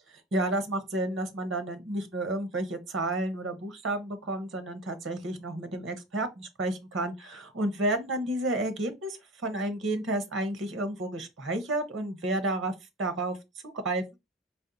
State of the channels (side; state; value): both; normal; correlation 0.30